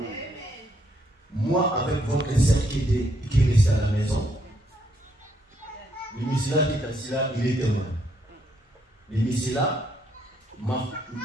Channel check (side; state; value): both; normal; correlation 0.73